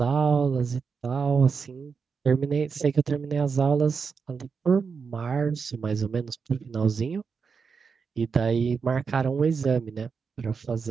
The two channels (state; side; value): quieter; left; 5.6 dB